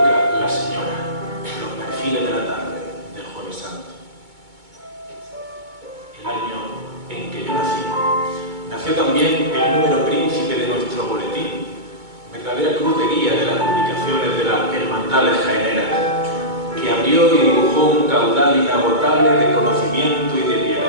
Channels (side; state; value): left; late; 2.2 ms